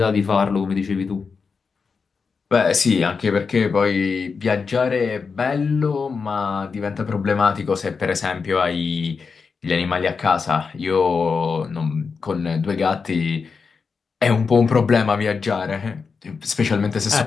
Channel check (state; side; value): quieter; right; 5.2 dB